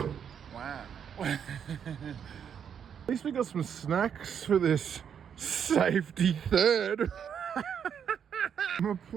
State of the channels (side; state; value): left; quieter; 8.0 dB